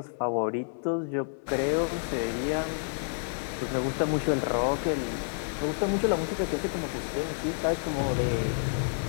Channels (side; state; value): right; silent; 58 dB below the other